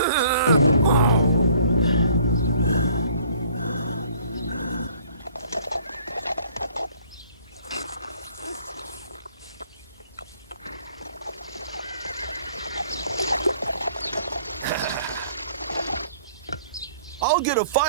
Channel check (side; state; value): both; inverted; correlation -0.57